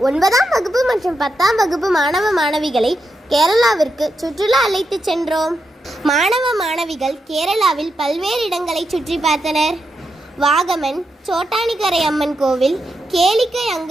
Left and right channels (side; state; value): both; normal; correlation 0.85